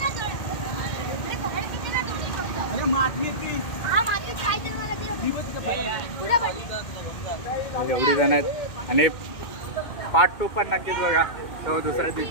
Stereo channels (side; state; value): right; late; 2.0 ms